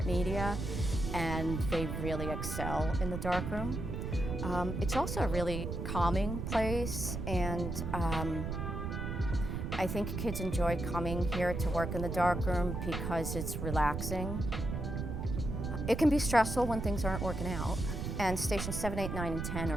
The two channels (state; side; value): noise; right; rumble, 4 dB below the sound